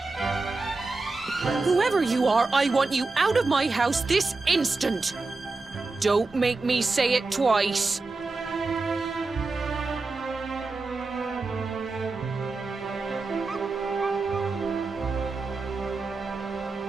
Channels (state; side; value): quieter; left; 3.7 dB